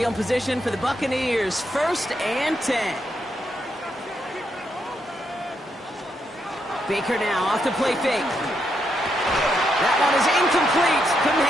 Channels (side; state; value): both; normal; correlation 0.80